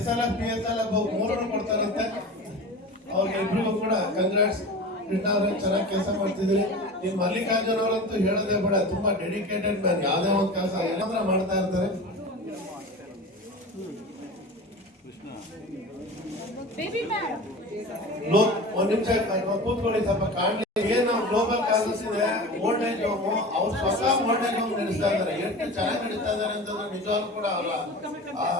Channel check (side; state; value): both; normal; correlation 0.33